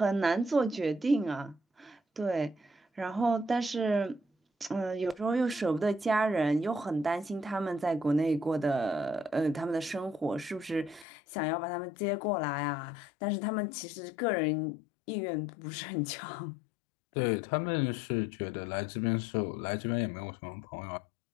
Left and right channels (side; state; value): right; drops out; at 11.1 s